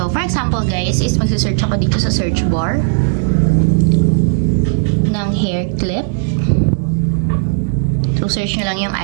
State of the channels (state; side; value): silent; left; digital silence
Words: for example guys, is magsisearch ako dito sa search bar ng hair clip. So, search nyo lang yung